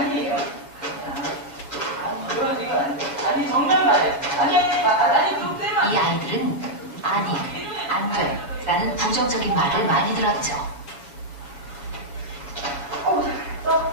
아니 정면 말이야. 아니 그럼 떼면 이 아이들은 아니, 안 돼 라는 부정적인 말을 많이 들었죠.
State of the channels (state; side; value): late; right; 7.1 ms